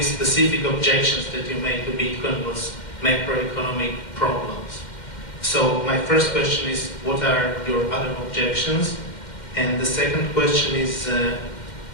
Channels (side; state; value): right; late; 2.1 ms